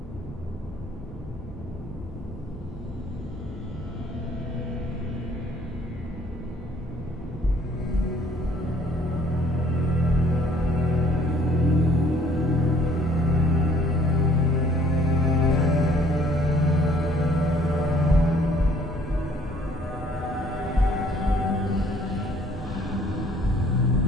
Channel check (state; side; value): normal; both; correlation 0.60